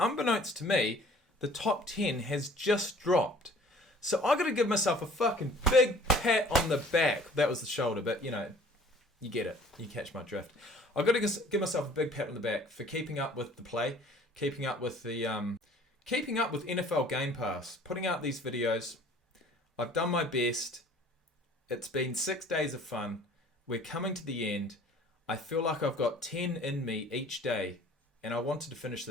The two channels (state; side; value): normal; both; correlation 0.51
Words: to me, the top 10 has just dropped. So I gotta give myself a fucking big pat on the back. That was the shoulder, but you know, you get it. You catch my drift. I've got to give myself a big pat on the back for keeping up with the play, keeping up with NFL Game Pass, putting out these videos. I've done my best. It's been 6 days of fun. We're coming to the end. I feel like I've got 10 in me each day, and I wanted to finish